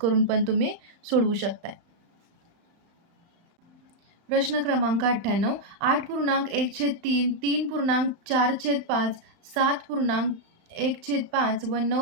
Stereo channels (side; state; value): left; late; 35 ms